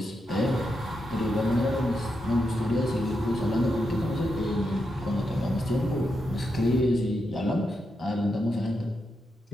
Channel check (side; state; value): both; normal; correlation 0.85